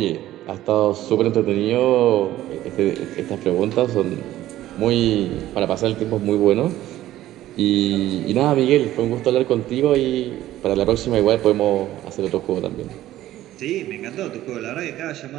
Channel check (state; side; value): quieter; left; 14.2 dB